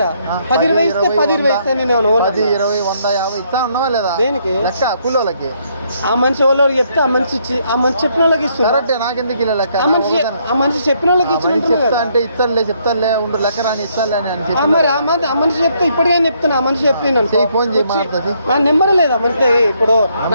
10-20 ఇస్తే 10-20 ఇస్తే నేను 10-20 100-50 ఇస్తా ఉన్నావా లేదా? దేనికి లెక్క కూలోళ్ళకి? ఆ మనిషి వాళ్ళకి చెప్తే ఆ మనిషి చెప్పిన వాళ్ళకి ఇస్తున్నారు. నాకెందుకు ఇలా లెక్క? ఆ మనిషి చెప్పిన వాళ్ళకి అంటే ఇస్తానులే చెప్తానులే ఉండు లెక్క రాని ఇస్తానులే అని మరి ఆ మనిషి చెప్తే ఇప్పటికే చెప్తున్నా. ఆ మనిషి చెప్తే ఫోన్ చేయి. నా నెంబర్ లేదు ఆ మనిషి. ఇప్పుడు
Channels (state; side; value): inverted; both; correlation -0.71